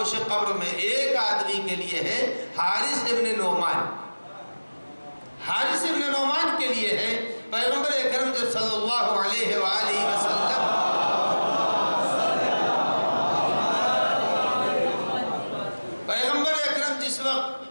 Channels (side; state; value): both; inverted; correlation -1.00